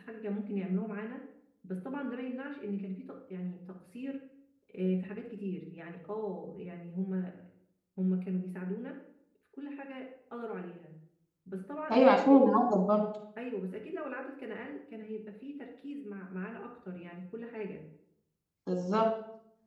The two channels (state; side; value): identical; both; correlation 1.00